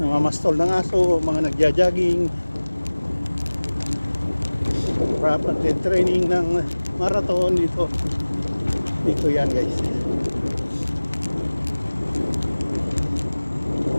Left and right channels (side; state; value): both; inverted; correlation -1.00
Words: ng aso, mga nagja-jogging, rapid training ng marathon dito. Dito yan, guys.